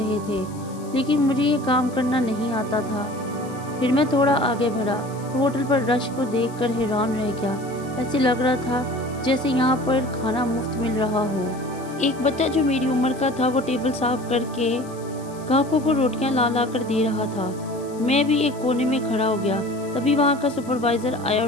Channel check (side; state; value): left; noise; hiss, 22 dB below the sound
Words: थे, लेकिन मुझे ये काम करना नहीं आता था। फिर मैं थोड़ा आगे बढ़ा तो होटल पर रश को देखकर हैरान रह गया। ऐसे लग रहा था जैसे यहाँ पर खाना मुफ्त मिल रहा हो। एक बच्चा जो मेरी उम्र का था वो टेबल साफ करके ग्राहकों को रोटियां ला ला कर दे रहा था। मैं भी एक कोने में खड़ा हो गया। तभी वहाँ का सुपरवाइजर आया